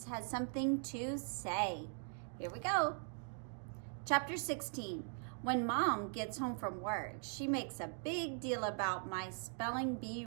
Has Something to Say. Here we go. Chapter 16. When Mom gets home from work, she makes a big deal about my spelling bee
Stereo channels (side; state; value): left; silent; 51 dB below the other